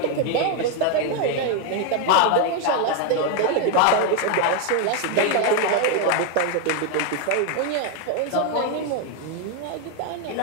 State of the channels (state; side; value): different; both; correlation 0.01